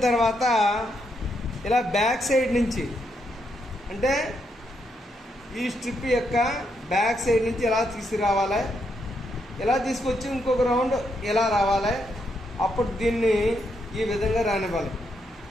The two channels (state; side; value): normal; both; correlation 0.79